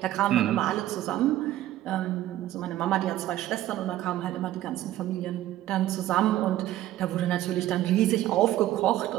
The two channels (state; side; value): quieter; left; 14.0 dB